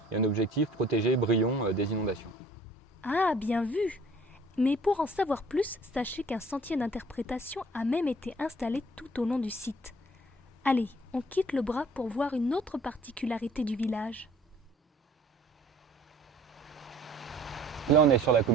et un objectif protéger Brion des inondations. Ah, bien vu! Mais pour en savoir plus, sachez qu'un sentier d'interprétation a même été installé tout au long du site. Allez, on quitte le bras pour voir une autre particularité du village. Là, on est sur la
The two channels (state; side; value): normal; both; correlation 0.54